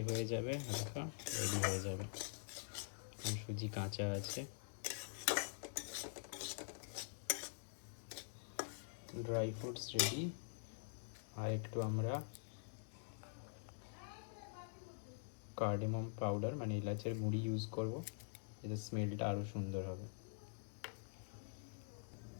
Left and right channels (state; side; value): silent; right; digital silence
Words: হয়ে যাবে, হালকা রেডি হয়ে যাবে। সুজি কাঁচা আছে। Dry fruits ready. আর একটু আমরা কার্ডামম পাউডার মানে এলাচের গুঁড়ি ইউজ করব, এতে স্মেলটা আরও সুন্দর হবে।